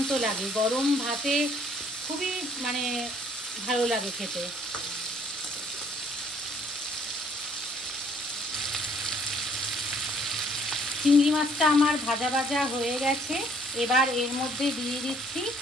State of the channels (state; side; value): normal; both; correlation 0.62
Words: লাগে। গরম ভাতে খুবই ভালো লাগে খেতে। চিংড়ি মাছটা আমার ভাজা ভাজা হয়ে গেছে। এবার এর মধ্যে দিয়ে দিচ্ছি